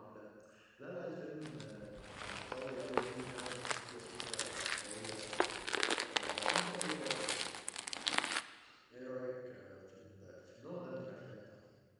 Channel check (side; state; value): both; identical; correlation 1.00